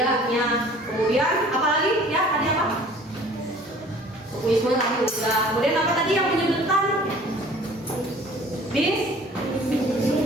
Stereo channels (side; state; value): both; normal; correlation 0.50